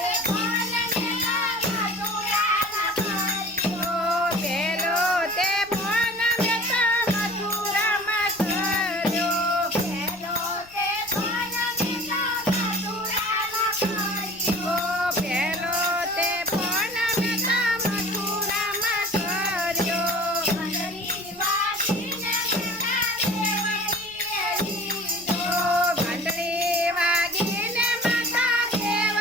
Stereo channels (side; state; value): left; noise; rumble, 27 dB below the sound